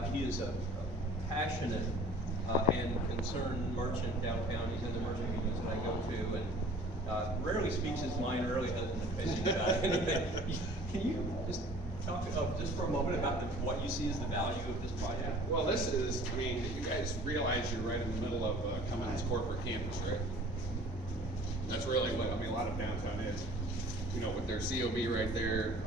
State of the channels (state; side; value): normal; both; correlation 0.48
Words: he is a passionate and concerned merchant downtown. He's in the merchant meetings that I go to, and rarely speaks his mind, rarely hasn't been fishing about anything. Can you just talk just for a moment about what you see as the value of this project? Well, this is, you guys realize you're right in the middle of Cummins corporate campus, right? That's really what, a lot of downtown is. With their COB right there,